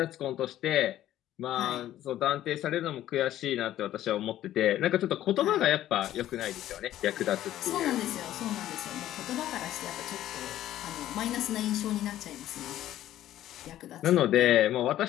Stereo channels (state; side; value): quieter; right; 13.1 dB